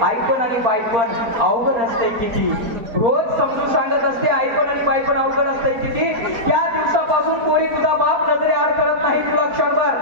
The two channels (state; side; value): late; left; 4.3 ms